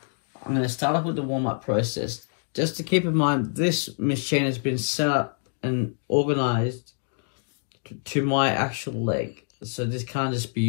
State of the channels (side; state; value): right; silent; 61 dB below the other